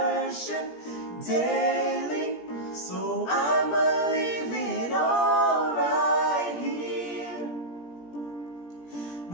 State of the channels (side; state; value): right; late; 17 ms